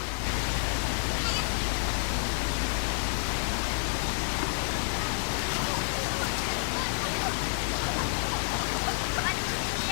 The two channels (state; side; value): silent; right; digital silence